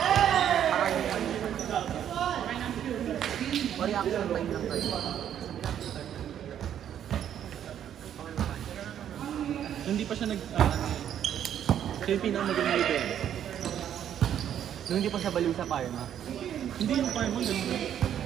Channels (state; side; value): quieter; left; 9.9 dB